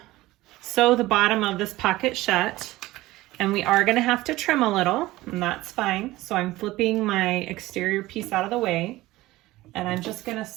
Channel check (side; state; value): left; quieter; 18.0 dB